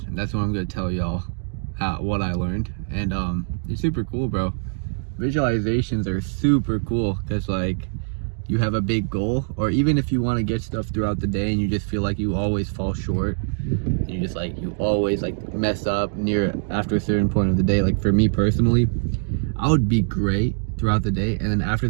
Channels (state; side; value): silent; left; digital silence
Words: And that's what I'm going to tell y'all what I learned. And it's super cool, bro. Visualizations are super cool because, like, you have a big goal, or even if you want to get stuff throughout the day and you just feel like you always fall short, you always mess up after a certain point of the day. Like, for me personally, I would be great throughout the day, and then after